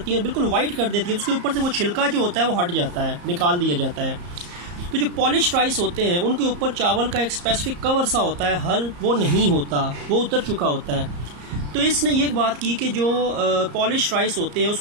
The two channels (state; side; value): late; left; 34 ms